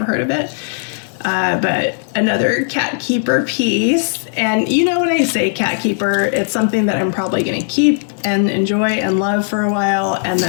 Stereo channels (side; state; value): right; silent; digital silence